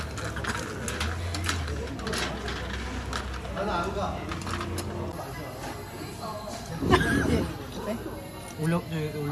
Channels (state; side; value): identical; both; correlation 1.00